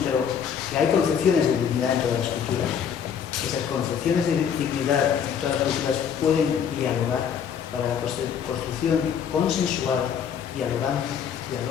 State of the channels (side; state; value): right; quieter; 7.8 dB